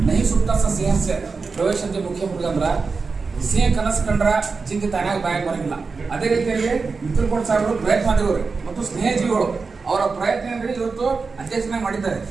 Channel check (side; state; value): left; quieter; 4.5 dB